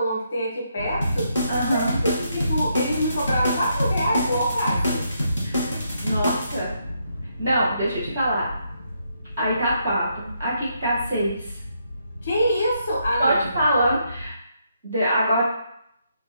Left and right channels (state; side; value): inverted; both; correlation -0.77